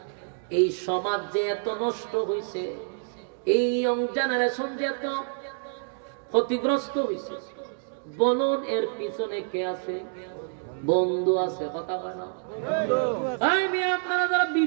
এই সমাজ যে এত নষ্ট হইছে, এই ইয়ং জেনারেশন যে এত ক্ষতিগ্রস্ত হইছে, বলুন এর পিছনে কে আছে? বন্ধু আছে। কথা কয় না? আপনারা যারা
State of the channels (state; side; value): silent; left; digital silence